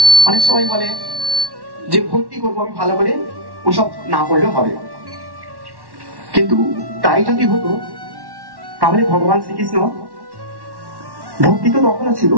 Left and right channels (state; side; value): late; left; 1.1 ms